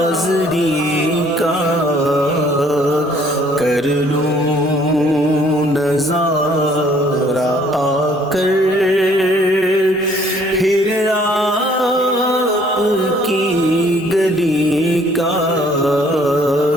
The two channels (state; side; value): normal; both; correlation 0.60